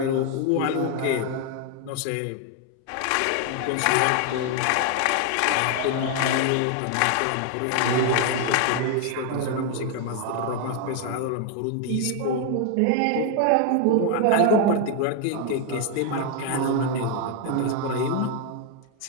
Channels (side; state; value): both; different; correlation 0.01